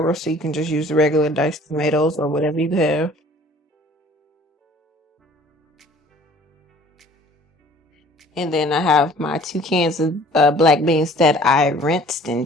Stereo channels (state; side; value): normal; both; correlation 0.52